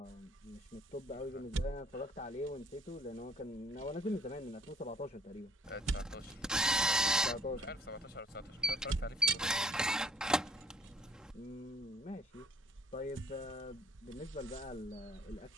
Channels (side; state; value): both; normal; correlation 0.59